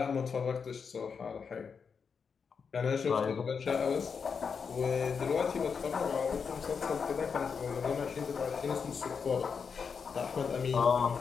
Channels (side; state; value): right; quieter; 5.9 dB